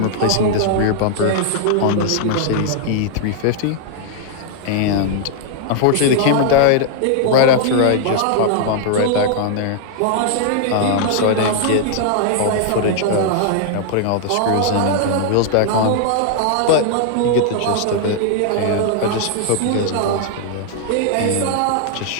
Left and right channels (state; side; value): different; both; correlation 0.00